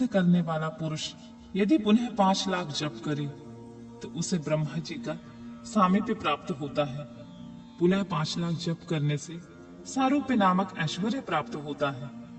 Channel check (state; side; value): identical; both; correlation 1.00